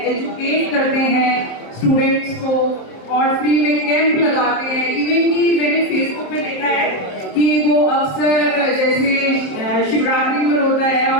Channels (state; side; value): late; right; 27 ms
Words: एजुकेट करते हैं स्टूडेंट्स को और फ्री में कैंप लगाते हैं। इवन कि मैंने फेसबुक पे देखा है कि वो अक्सर जैसे शिवरात्रि में होता है